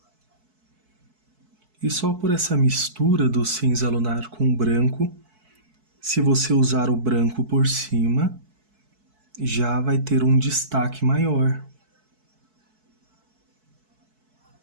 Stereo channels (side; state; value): left; late; 4.6 ms